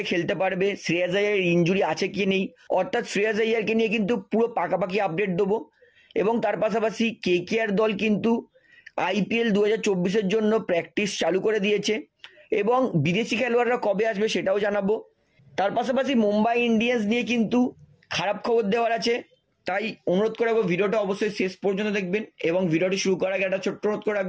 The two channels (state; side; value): identical; both; correlation 1.00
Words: খেলতে পারবে, শ্রেয়াস আইয়ার ইনজুরি আছে কি নেই, অর্থাৎ শ্রেয়াস আইয়ারকে নিয়ে কিন্তু পুরো পাকাপাকি আপডেট দেবো। এবং তার পাশাপাশি কেকেআর দল কিন্তু আইপিএল 2024-এর জন্য প্র্যাকটিস চালু করে দিয়েছে এবং বিদেশি খেলোয়াড়রা কবে আসবে সেটাও জানাবো। তার পাশাপাশি মুম্বাই ইন্ডিয়ান্স নিয়ে কিন্তু খারাপ খবর দেওয়ার আছে, তাই অনুরোধ করে রাখবো ভিডিওটা অবশ্যই শেষ পর্যন্ত দেখবেন। এবং ভিডিওটি শুরু করার আগে একটা ছোট্ট অনুরোধ করে